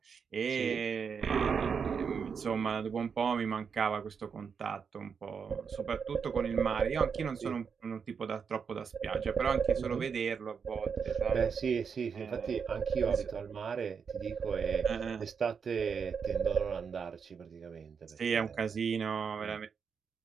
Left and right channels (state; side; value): quieter; left; 6.3 dB